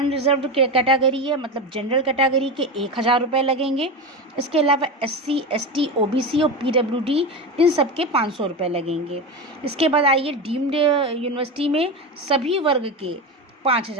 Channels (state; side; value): normal; both; correlation 0.20